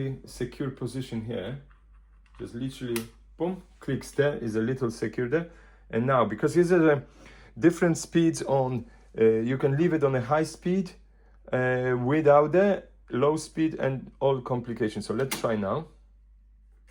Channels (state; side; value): identical; both; correlation 1.00